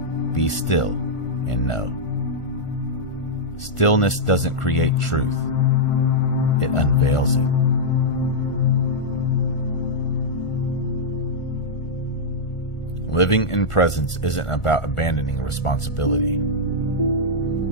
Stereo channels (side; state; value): right; late; 1.4 ms